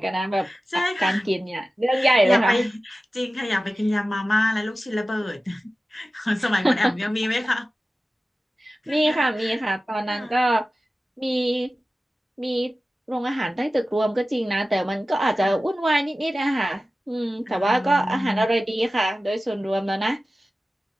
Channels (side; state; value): both; normal; correlation 0.95